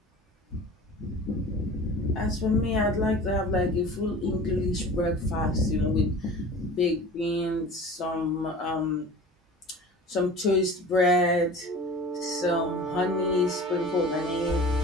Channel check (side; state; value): both; normal; correlation 0.40